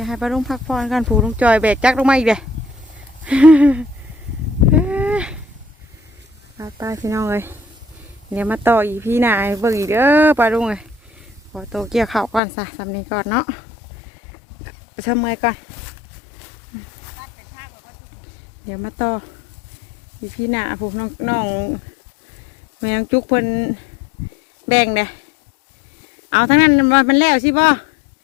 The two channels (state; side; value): drops out; right; at 12.4 s